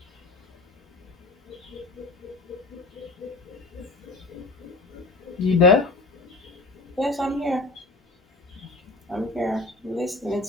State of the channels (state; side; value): quieter; right; 3.2 dB